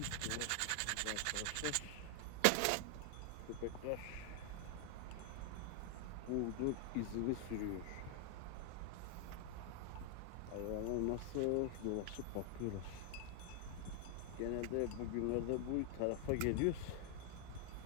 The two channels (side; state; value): both; different; correlation 0.00